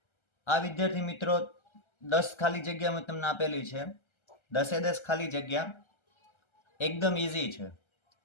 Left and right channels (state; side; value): late; right; 1.3 ms